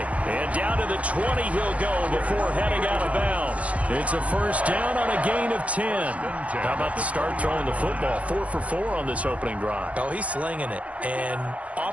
And down to the 20 he'll go before heading out of bounds. It's a first down on a gain of 10. How about the start throwing the football? 4 for 4 on this opening drive. Oh, he's slinging it. And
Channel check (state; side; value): late; left; 0.065 ms